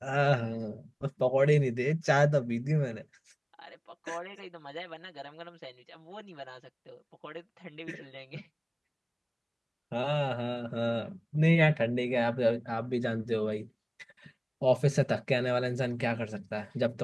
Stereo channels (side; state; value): both; identical; correlation 1.00